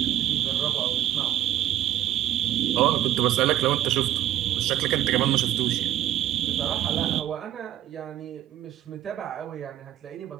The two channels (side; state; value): left; quieter; 12.6 dB